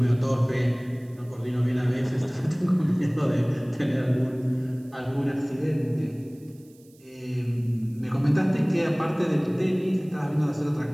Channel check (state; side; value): noise; right; hiss, 30 dB below the sound